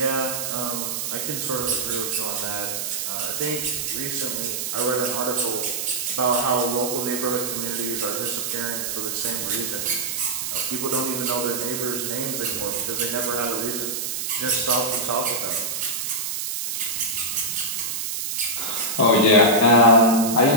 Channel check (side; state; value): right; noise; hiss, 3 dB below the sound